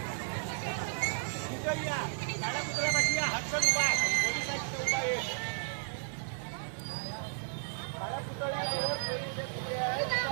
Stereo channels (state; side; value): silent; left; digital silence